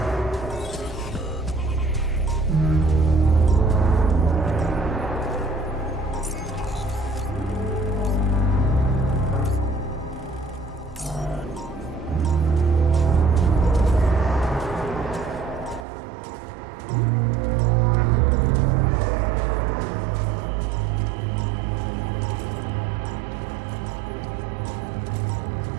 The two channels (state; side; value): drops out; left; at 15.9 s